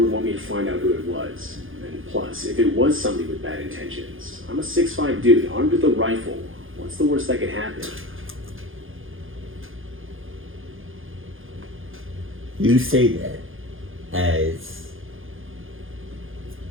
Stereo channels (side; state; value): left; late; 0.59 ms